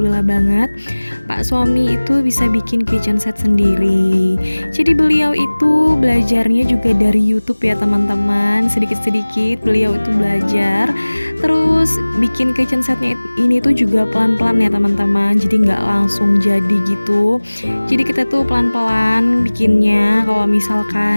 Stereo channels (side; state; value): both; inverted; correlation -1.00